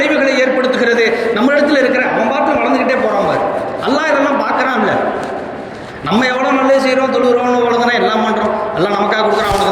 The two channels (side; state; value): both; identical; correlation 1.00